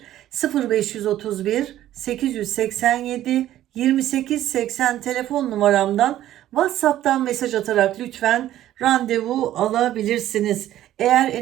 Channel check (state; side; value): quieter; left; 13.0 dB